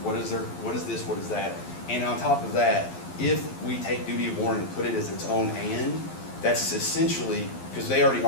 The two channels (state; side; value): late; right; 11 ms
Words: what is this, what is that? And on top of that, if we take duty of warning and put it as its own and, that's essentially, because they already